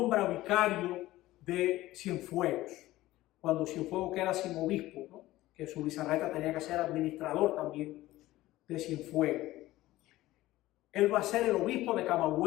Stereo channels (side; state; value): right; quieter; 16.7 dB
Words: vicario de Cienfuegos, cuando Cienfuegos queda sin obispo, ¿no? Que Zubizarreta tenía que ser administrador también de Cienfuegos. Él va a ser el obispo de